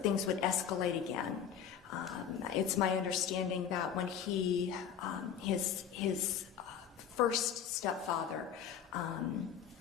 things would escalate again. It's my understanding that when his first stepfather,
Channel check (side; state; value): right; quieter; 8.4 dB